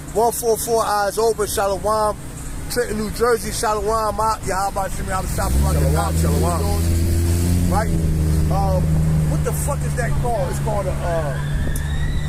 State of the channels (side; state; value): both; identical; correlation 1.00